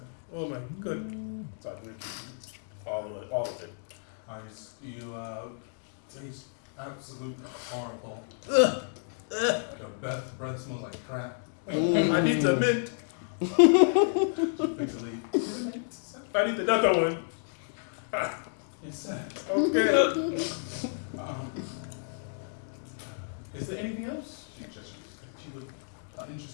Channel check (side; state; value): right; silent; digital silence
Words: Oh my good. So I drink all of it. You taste absolutely horrible. Your breath smells like crap. I need the mint. Just pick the leaf. Give it a mint, sir. I need another one. Yes, sir. Okay. Is there anything else she would